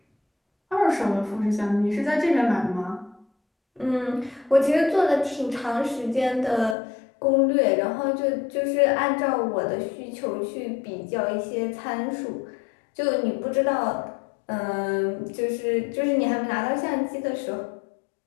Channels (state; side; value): drops out; right; at 6.8 s